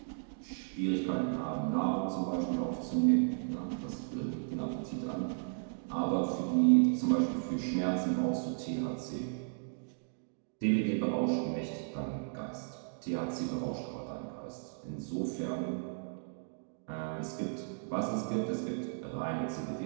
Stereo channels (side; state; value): left; silent; digital silence